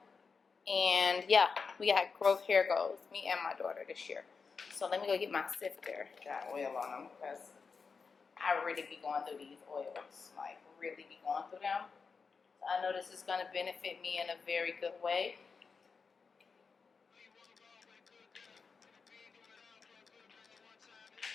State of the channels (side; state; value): right; quieter; 5.1 dB